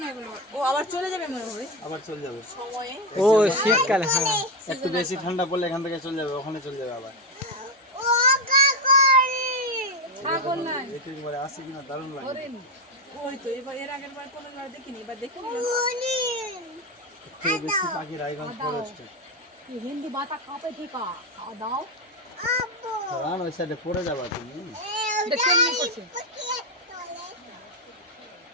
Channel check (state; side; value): normal; both; correlation 0.10